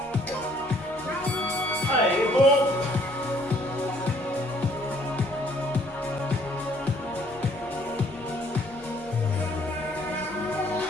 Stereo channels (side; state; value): both; normal; correlation 0.62